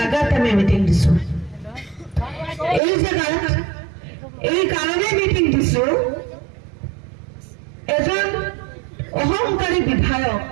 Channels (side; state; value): left; drops out; at 2.8 s